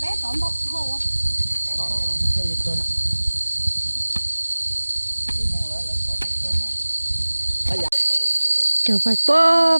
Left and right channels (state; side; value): inverted; both; correlation -1.00